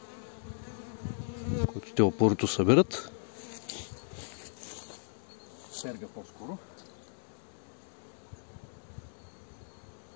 който те опорито събират. Серга по-скоро.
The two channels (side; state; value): right; silent; digital silence